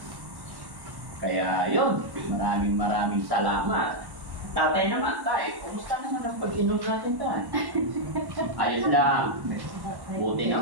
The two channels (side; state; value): left; late; 1.1 ms